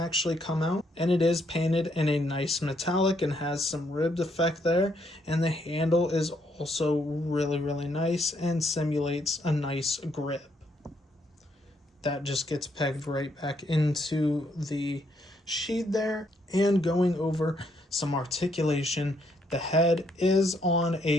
come out. And it is painted in a nice metallic and has some ribbed effect there. And the handle is also really nice and simulates a nice grip. That just gets pegged right back into the sheath there. And going over some articulation, the head is on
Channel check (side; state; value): both; normal; correlation 0.73